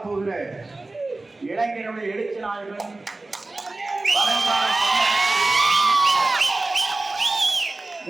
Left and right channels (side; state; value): left; quieter; 3.1 dB